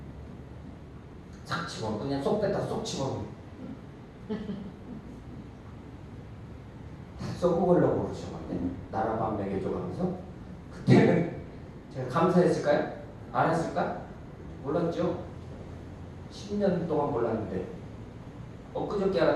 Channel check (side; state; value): both; identical; correlation 1.00